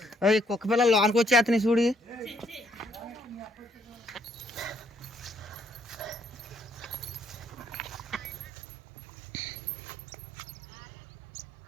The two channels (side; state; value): left; drops out; at 8.5 s